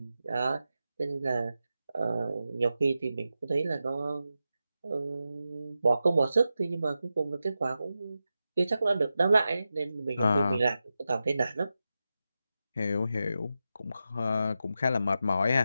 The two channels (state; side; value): inverted; both; correlation -0.91